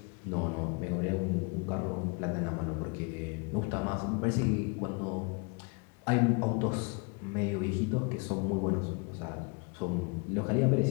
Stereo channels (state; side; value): quieter; right; 33.1 dB